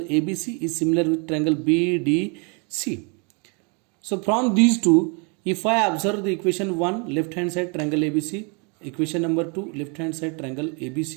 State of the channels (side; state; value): left; quieter; 34.4 dB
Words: is similar with triangle BDC. So from these two, if I observe the equation 1, left hand side triangle ABC, equation number 2, left hand side triangle